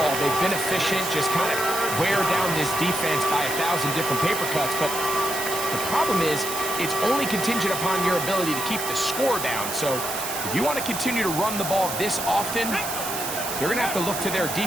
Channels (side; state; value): right; noise; hiss, 5 dB below the sound